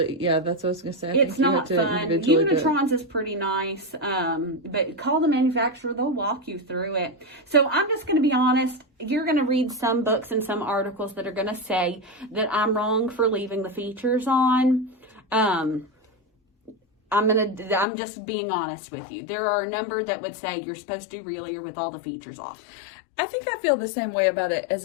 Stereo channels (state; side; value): drops out; right; at 17.9 s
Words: yeah, that's what I was going to say. It's not fun. Unitron's is pretty nice, but call the manufacturer. They'll walk you through it. So I'm just going to be honest. You're going to read some books and some articles that are going to say that I'm wrong for leaving the features on. I'm just being honest with you. There are a number that would say you're supposed to do Relier with all the features off. I think I feel the same way about it as